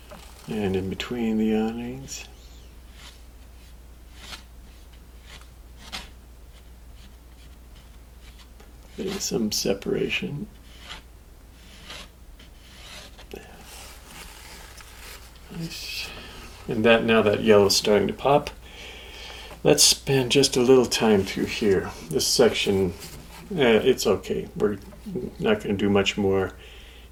And in between the awnings. There's some separation. Nice. And now that yellow is starting to pop, let's spend just a little time through here. This section, it's okay. We're not going to do much more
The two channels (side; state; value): both; identical; correlation 1.00